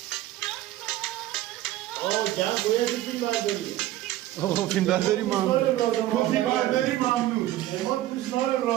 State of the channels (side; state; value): left; quieter; 14.7 dB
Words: جمع باید فیلم برداری آقا فیلم برداری فیلم برداری ممنون اما دوستان